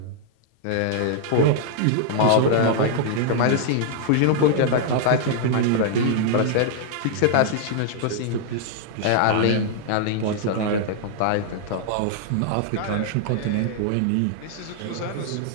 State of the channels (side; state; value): both; different; correlation -0.01